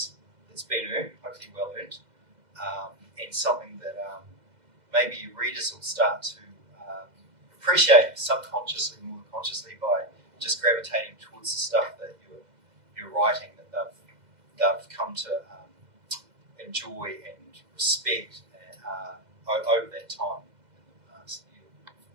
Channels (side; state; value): left; late; 2.0 ms